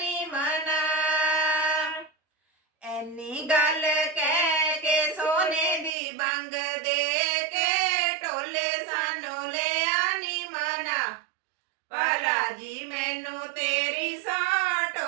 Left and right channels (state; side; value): drops out; left; at 5.9 s